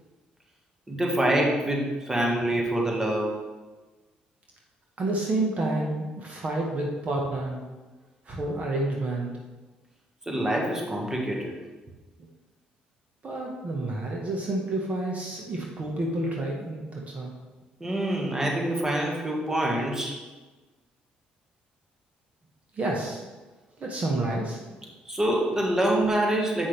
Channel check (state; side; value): normal; both; correlation 0.74